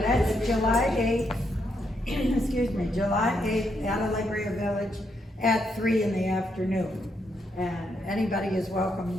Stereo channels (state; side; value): normal; both; correlation 0.78